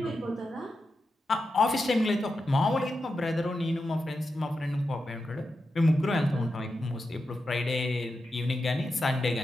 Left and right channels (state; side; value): normal; both; correlation 0.89